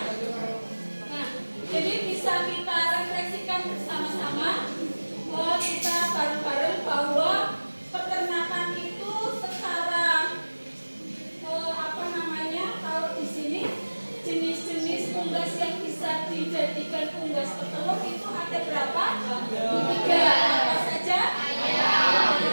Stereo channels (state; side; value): inverted; both; correlation -1.00